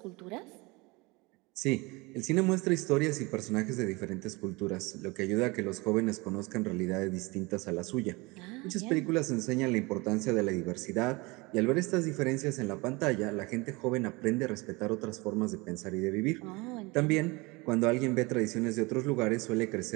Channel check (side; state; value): left; quieter; 25.0 dB